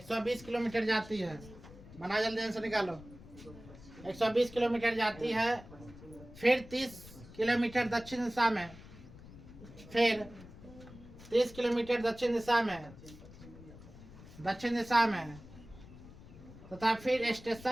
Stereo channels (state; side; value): noise; left; rumble, 18 dB below the sound